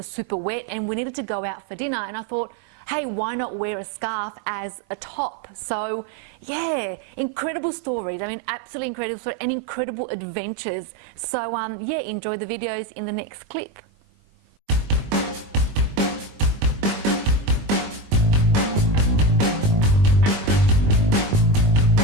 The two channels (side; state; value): left; late; 20 ms